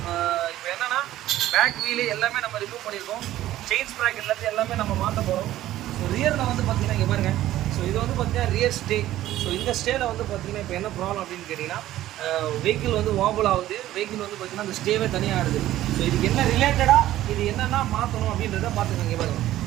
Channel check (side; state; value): left; quieter; 14.2 dB